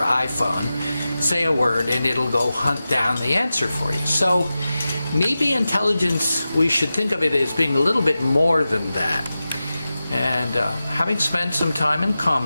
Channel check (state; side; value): inverted; both; correlation -0.94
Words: iPhone, say a word, and it'll go hunt down the answer for you. So maybe intelligence, we should think of it as being a little bit more than that. And having spent some time in